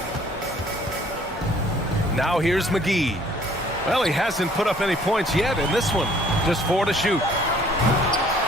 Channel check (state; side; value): normal; both; correlation 0.58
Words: Now here's McGee. Well, he hasn't put up any points yet in this one. Just 4 to shoot.